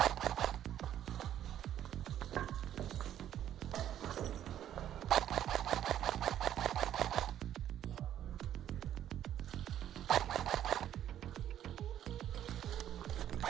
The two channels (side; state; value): left; quieter; 11.0 dB